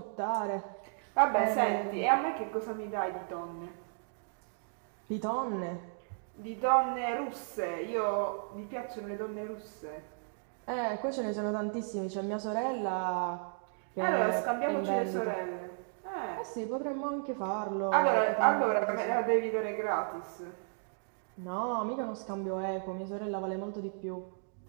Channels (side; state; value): left; silent; digital silence